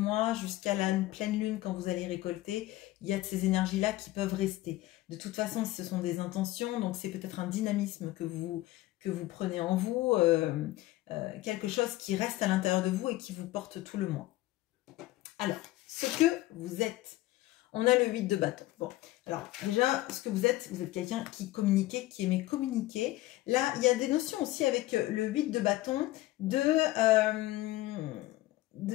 jusqu'à la pleine lune quand vous allez récolter. Il y a de ces énergies-là qui peuvent rester. De toute façon, ce sont des intentions, donc c'est peut-être un dynamisme que vous prenez en vous, quelque chose qui reste à l'intérieur de vous et qui vous porte tout le mois. Alors, ce que vous êtes, on a le 8 de bâton. Bon, alors déjà, ce que vous êtes quelqu'un qui communiquait, qui aimait communiquer. Là, il y a des notions aussi avec le 8 de bâton de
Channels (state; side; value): quieter; right; 17.1 dB